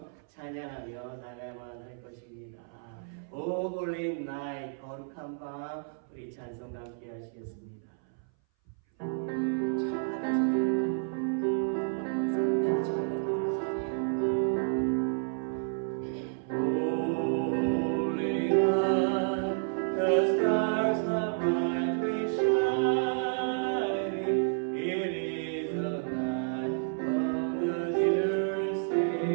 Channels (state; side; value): silent; left; 57 dB below the other